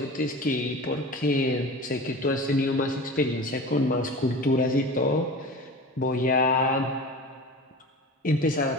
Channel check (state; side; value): normal; both; correlation 0.34